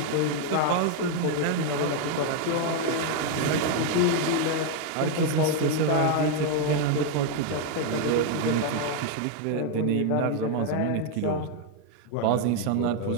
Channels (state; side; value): different; both; correlation 0.01